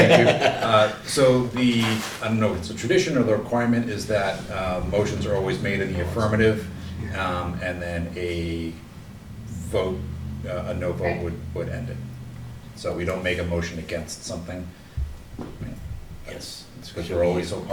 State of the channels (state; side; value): identical; both; correlation 1.00